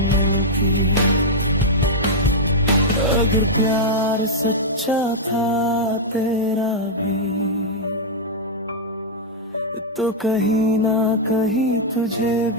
अगर प्यार सच्चा था तेरा भी तो कहीं ना कहीं तुझे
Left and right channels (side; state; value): both; normal; correlation -0.06